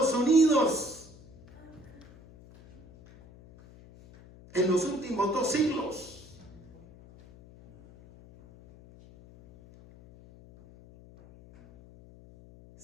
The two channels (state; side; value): noise; left; hum, 22 dB below the sound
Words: Unidos en los últimos 2 siglos?